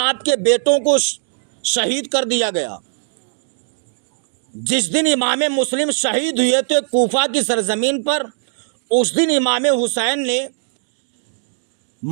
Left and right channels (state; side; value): silent; left; digital silence